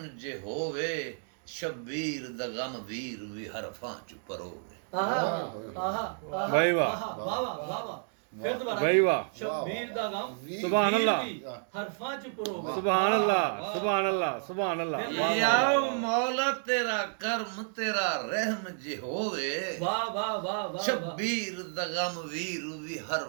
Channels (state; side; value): silent; left; 57 dB below the other